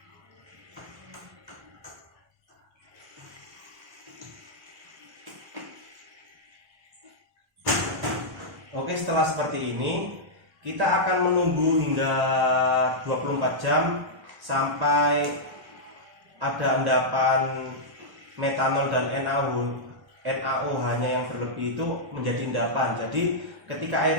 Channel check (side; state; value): left; late; 1.1 ms